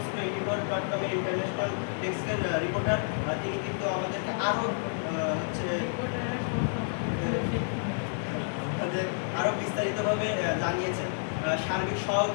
24.com ইন্টারন্যাশনাল ডেস্কের রিপোর্টার, তিনি কিন্তু আমাদেরকে আরও আরও বিস্তারিতভাবে জানিয়েছেন। সার্বিক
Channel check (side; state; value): right; silent; digital silence